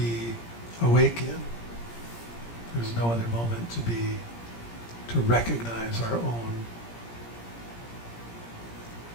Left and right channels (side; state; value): right; late; 17 ms